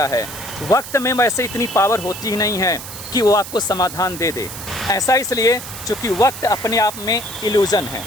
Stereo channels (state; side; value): noise; right; hiss, 11 dB below the sound